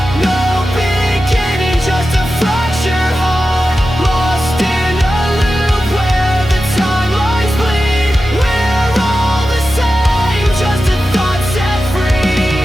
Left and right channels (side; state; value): both; normal; correlation 0.92